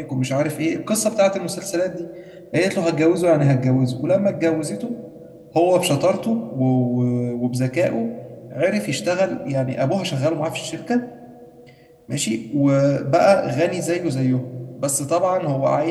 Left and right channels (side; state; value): both; identical; correlation 1.00